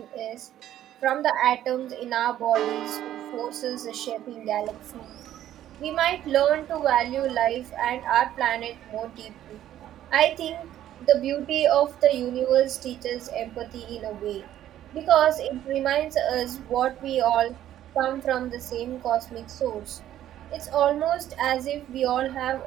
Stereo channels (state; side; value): quieter; left; 12.1 dB